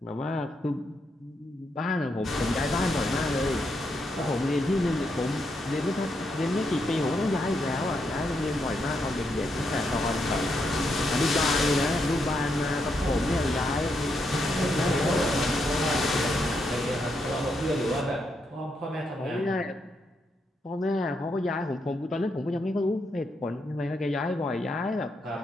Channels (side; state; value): both; normal; correlation 0.80